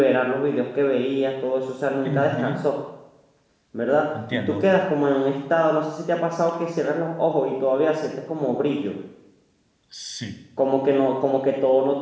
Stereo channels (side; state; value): both; identical; correlation 1.00